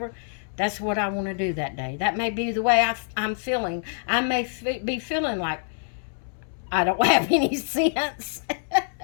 that's what I want to do that day. That may be the way I'm feeling. I may be feeling like I don't have any sense.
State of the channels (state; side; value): silent; right; 61 dB below the other